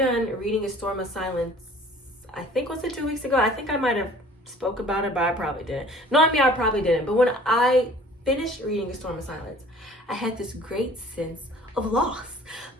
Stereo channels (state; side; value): normal; both; correlation 0.50